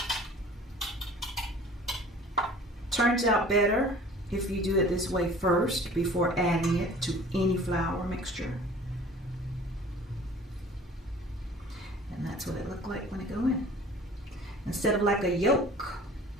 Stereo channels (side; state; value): both; normal; correlation 0.47